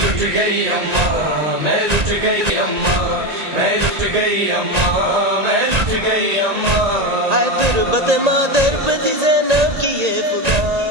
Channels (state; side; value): late; left; 1.8 ms